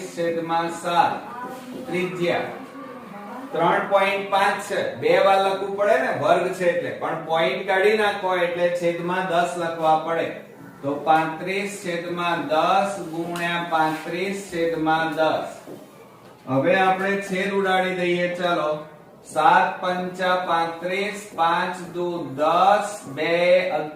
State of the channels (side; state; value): both; identical; correlation 1.00